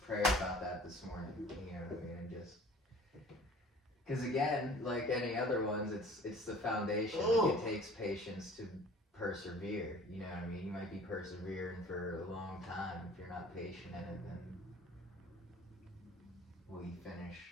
prayer about that this morning. You know what I mean? And just because again, like any other ones, it's the foundation. Like, Oh. it takes patience to persevere. You know what I mean? You might be persevering for a long time. If you're not patient in it, then will you finish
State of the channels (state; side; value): normal; both; correlation 0.48